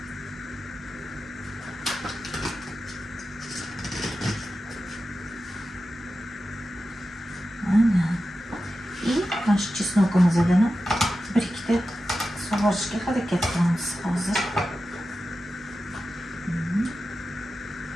mana shu chesnokimizdan bir ikkita sug'orishga harakat qilamiz hozir.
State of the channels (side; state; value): both; normal; correlation 0.92